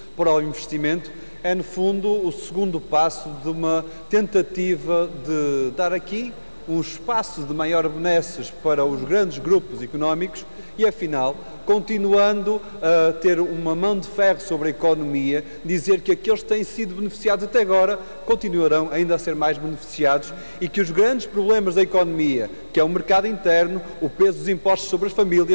para o investimento, é, no fundo, o segundo passo de uma tentativa de dar aqui um espaço de maior benesses para os grandes grupos económicos e, afinal, continuando a ter uma mão de ferro sobre a economia, dizer que aqueles que têm sido beneficiados até agora continuarão ainda a ser mais beneficiados e que os grandes problemas da economia, que é o mercado interno, o peso dos impostos sobre as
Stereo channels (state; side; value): inverted; both; correlation -1.00